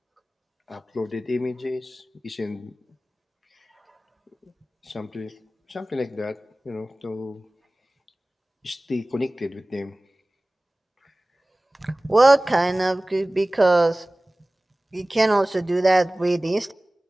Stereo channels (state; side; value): normal; both; correlation 0.98